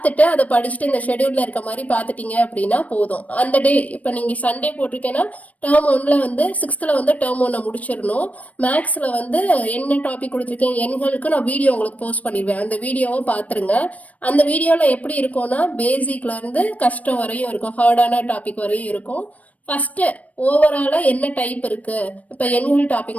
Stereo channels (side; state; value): right; late; 0.069 ms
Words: அதை படிச்சுட்டு இந்த ஷெடியூல்ல இருக்க மாதிரி பார்த்துட்டீங்க அப்படின்னா போதும். அந்த டே இப்போ நீங்க சண்டே போட்டிருக்கேன்னா டேர்ம் 1ல வந்து 6th வந்து டேர்ம் 1 முடிச்சிடணும். மேக்ஸ்ல வந்து என்ன டாபிக் கொடுத்துருக்கேன் எண்களுக்கு நான் வீடியோ உங்களுக்கு போஸ்ட் பண்ணிடுவேன். அந்த வீடியோவை பார்த்துருங்க. அந்த வீடியோவில் எப்படி இருக்கும்னா, பேசிக்ல இருந்து கஷ்டம் வரையும் இருக்கும், ஹார்டான டாபிக் வரையும் இருக்கும். ஃபர்ஸ்ட் ஓவராலா என்ன டைப் இருக்கு, இப்போ எண்கள்